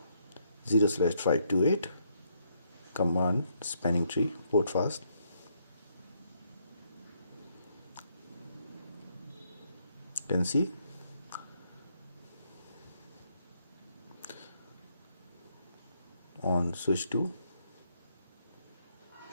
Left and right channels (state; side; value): inverted; both; correlation -0.74